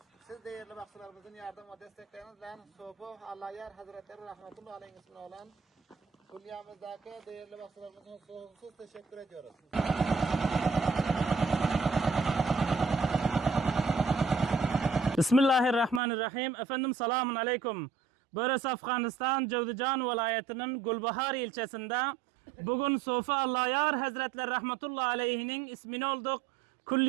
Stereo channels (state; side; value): drops out; left; at 16.0 s